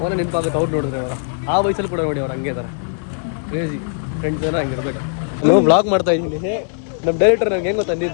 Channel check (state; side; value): silent; right; digital silence